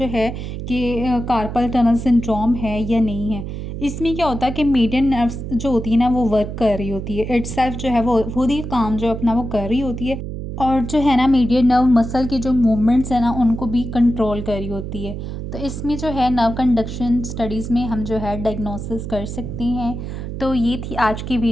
है कि कार्पल टनल सिंड्रोम है या नहीं है। इसमें क्या होता है कि मीडियन नर्व्स जो होती है ना वो वर्क कर रही होती है, इटसेल्फ जो है वो खुद ही काम जो अपना वो कर रही होती है, और जो है ना मीडियन नर्व मसल की जो मूवमेंट्स है ना उनको भी कंट्रोल कर रही होती है। तो इसमें जो है नर्व कंडक्शन स्टडीज़ में हम जो है डायग्नोसिस कर सकते हैं। तो ये थी आज की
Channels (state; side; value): noise; right; hum, 7 dB below the sound